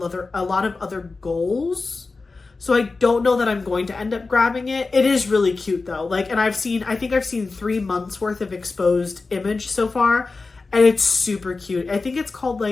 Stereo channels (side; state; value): right; quieter; 3.9 dB